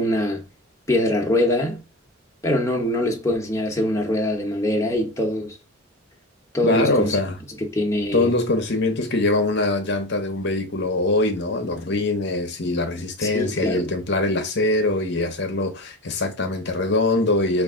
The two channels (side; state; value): both; normal; correlation 0.26